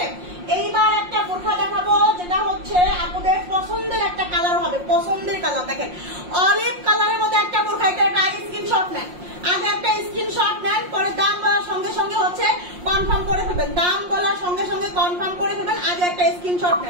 এইবার একটা বোরখা দেখাবো যেটা হচ্ছে আপনাদের পছন্দের একটা কালার হবে, পছন্দের কালার। দেখেন অলিভ কালারের মধ্যে একটা বোরখা, এটা একটা স্ক্রিনশট নেন, আগে একটা স্ক্রিনশট নেন, পরে দাম বলার সঙ্গে সঙ্গে হচ্ছে কনফার্ম করে ফেলবেন, দাম বলার সঙ্গে সঙ্গে কনফার্ম করে ফেলবেন, আগে একটা স্ক্রিনশট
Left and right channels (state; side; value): late; left; 5.6 ms